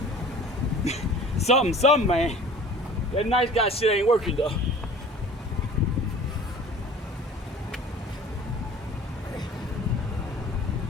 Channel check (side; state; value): both; normal; correlation 0.45